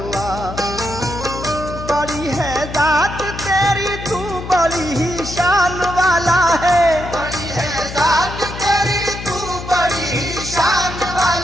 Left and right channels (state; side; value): noise; left; hum, 9 dB below the sound